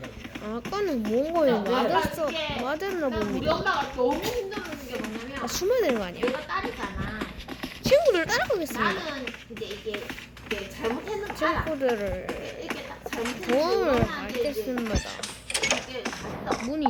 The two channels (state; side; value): identical; both; correlation 1.00